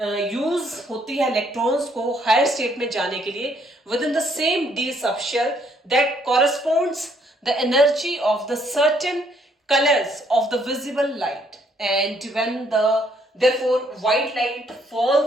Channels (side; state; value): both; normal; correlation 0.68